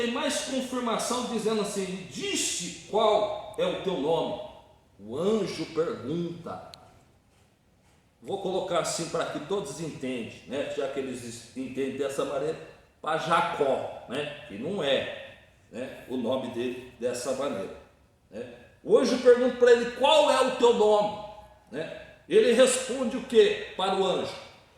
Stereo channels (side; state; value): both; identical; correlation 1.00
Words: mais confirmação, dizendo assim: disse qual é o teu nome? O anjo pergunta. Vou colocar assim para que todos entendam, né? Já que eles entendem dessa maneira, para Jacó, né? Que não é, né, o nome dele dessa maneira, né? O anjo pergunta para ele: qual é o teu nome? Né? Ele responde o que para o anjo?